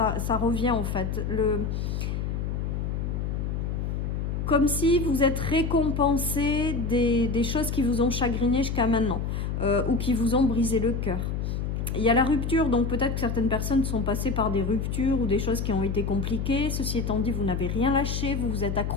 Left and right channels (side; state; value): left; noise; hum, 2 dB below the sound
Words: revient en fait. Comme si vous êtes récompensé des choses qui vous ont chagriné jusqu'à maintenant, ou qui vous ont brisé le cœur. Il y a la rupture, donc peut-être que certaines personnes sont passées par des ruptures ou des choses qui ont été compliquées. Ceci étant dit, vous n'avez rien lâché, vous vous êtes